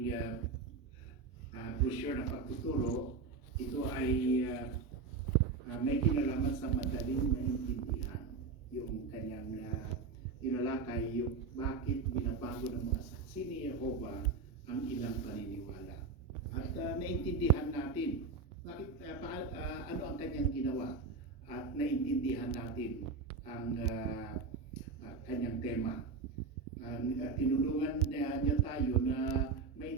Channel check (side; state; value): left; quieter; 4.5 dB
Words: brochure na pagtuturo. Ito ay may kinalaman sa madaling maintindihan. Yung kanyang inalakay, yung bakit binabago ng mga saksi ni Jehova ang ilang paniniwala. At naintindihan natin bakit, ano ang kanyang ginawa, at naintindihan natin ang kanyang tema. Tinulungan niya tayo na